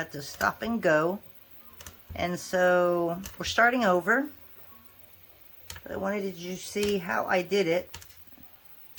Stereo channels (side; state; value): both; identical; correlation 1.00